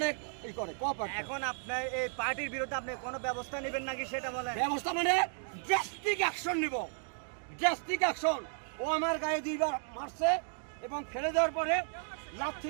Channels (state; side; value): silent; left; 55 dB below the other